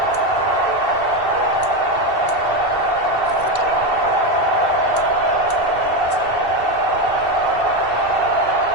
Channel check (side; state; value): left; late; 2.7 ms